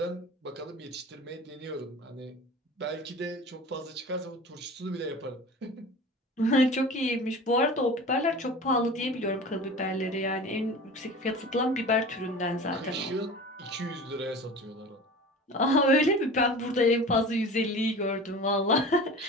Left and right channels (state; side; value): normal; both; correlation 0.36